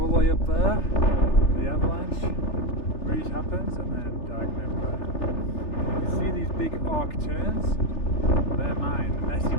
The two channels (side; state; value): right; late; 3.4 ms